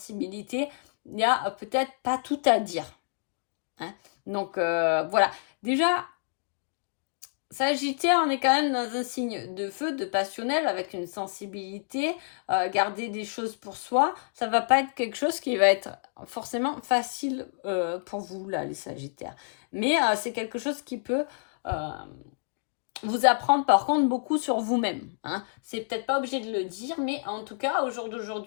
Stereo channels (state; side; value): silent; right; digital silence